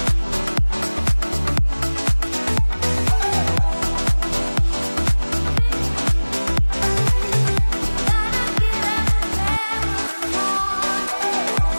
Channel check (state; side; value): inverted; both; correlation -1.00